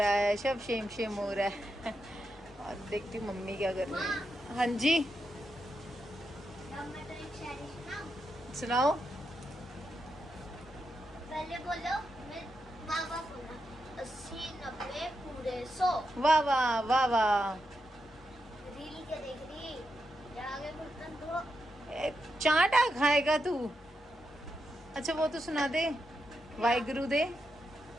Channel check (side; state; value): both; normal; correlation 0.85